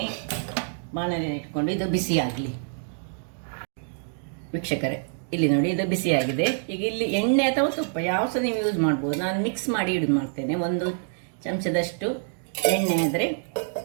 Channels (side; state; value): left; silent; digital silence